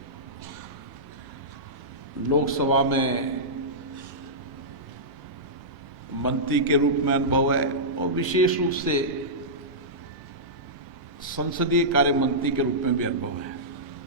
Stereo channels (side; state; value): both; normal; correlation -0.15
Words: लोकसभा में मंत्री के रूप में अनुभव है और विशेष रूप से संसदीय कार्य मंत्री के रूप में भी अनुभव है।